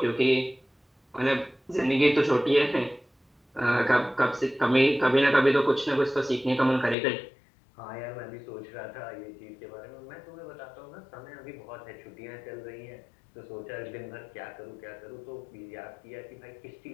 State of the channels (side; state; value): right; drops out; at 7.0 s